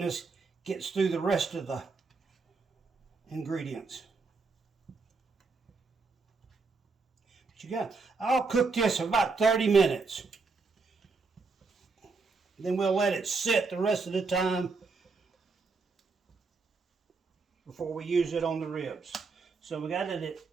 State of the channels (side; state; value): left; quieter; 4.3 dB